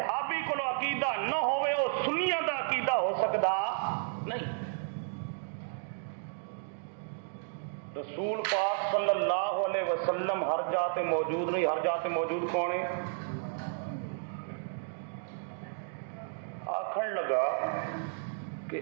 کو عقیدہ نہ ہوئے وہ سنیاں دا عقیدہ ہو سکتا نہیں۔ رسول پاک صلی اللہ علیہ وسلم ہر جاتے موجود نہیں. ہر جاتے موجود کون ہے؟ آکھن لگا کہ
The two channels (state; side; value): silent; left; digital silence